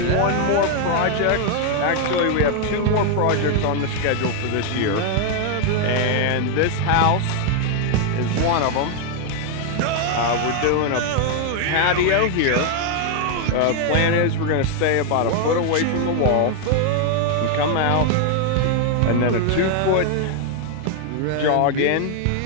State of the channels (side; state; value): both; different; correlation 0.00